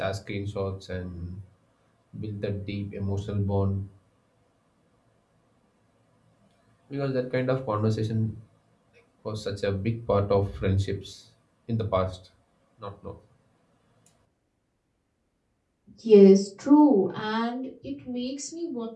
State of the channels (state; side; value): identical; both; correlation 1.00